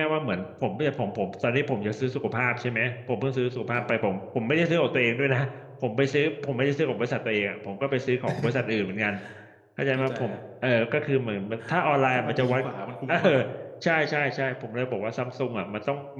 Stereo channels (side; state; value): both; identical; correlation 1.00